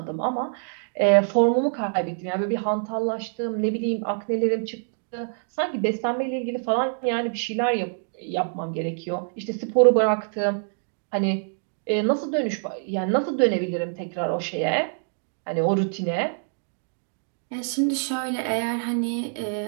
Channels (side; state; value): left; silent; digital silence